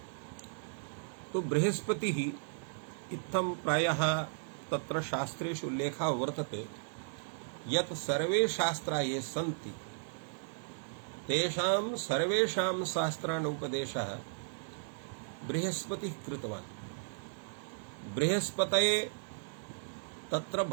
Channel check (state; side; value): silent; left; 54 dB below the other